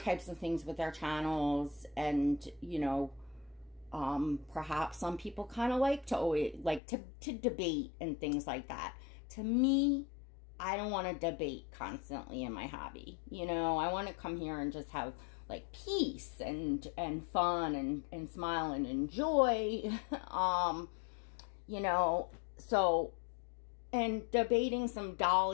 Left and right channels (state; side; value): drops out; right; at 6.8 s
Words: of things with their channels. And, you know, perhaps some people kind of like to always to debate and things like that. To me, I don't want to debate constantly in my hobby. You know, I want to come here and just have like peace and fun and smile and enjoy. You know, so, and debating some